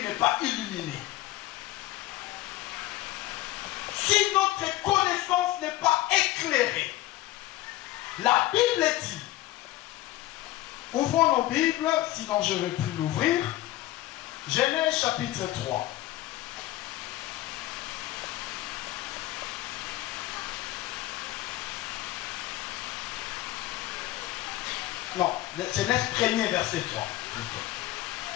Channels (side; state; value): right; quieter; 16.4 dB